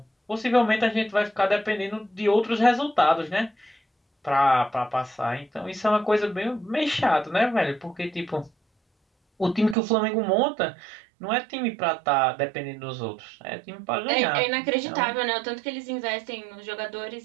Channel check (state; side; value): drops out; left; at 9.8 s